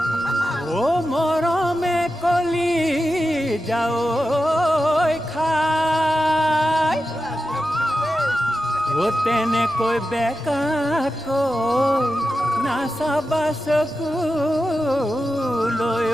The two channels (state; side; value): noise; left; rumble, 25 dB below the sound